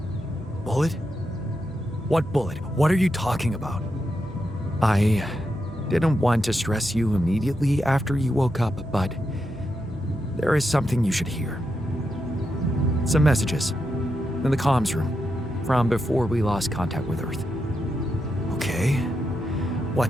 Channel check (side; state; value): both; normal; correlation 0.85